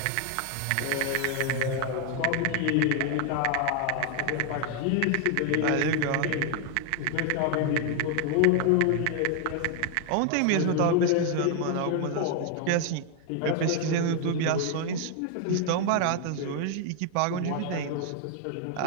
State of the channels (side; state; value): both; different; correlation 0.00